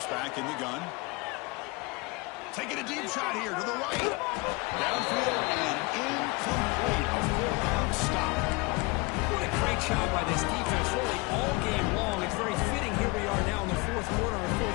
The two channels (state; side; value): quieter; right; 26.0 dB